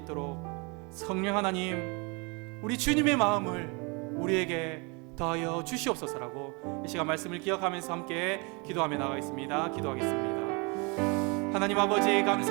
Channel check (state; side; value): quieter; left; 30.2 dB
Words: 성령 하나님, 우리 주님의 마음을 우리에게 더하여 주시옵소서라고 이 시간 말씀을 기억하면서 함께 기도하며 나가겠습니다. 기도하겠습니다. 하나님 아버지